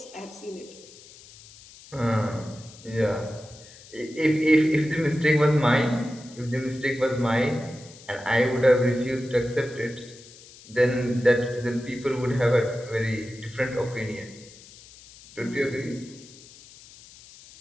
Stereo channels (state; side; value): noise; left; hiss, 21 dB below the sound